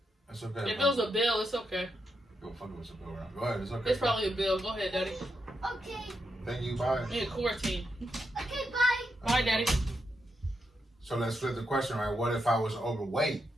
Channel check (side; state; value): both; normal; correlation 0.83